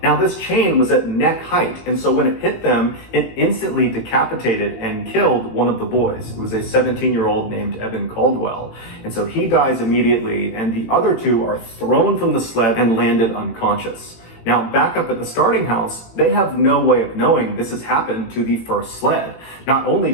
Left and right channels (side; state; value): right; late; 18 ms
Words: Now, this chain was at neck height, and so when it hit them, it instantly decapitated and killed one of the boys. It was a 17-year-old named Evan Caldwell. And so he dies immediately, and the other two are thrown from the sled and landed unconscious. Now, back up at the starting house, they have no way of knowing this has happened to the first sled. Not only